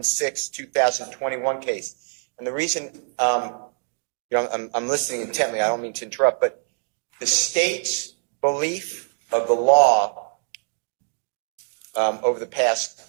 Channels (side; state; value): left; silent; 63 dB below the other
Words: 2021 case. And the reason, I'm listening intently, I don't mean to interrupt, but the state's belief of the law over the past